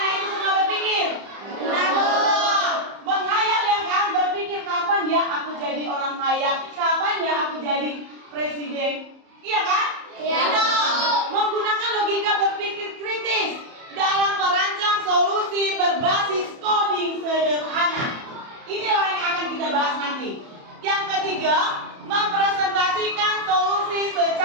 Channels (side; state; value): left; late; 30 ms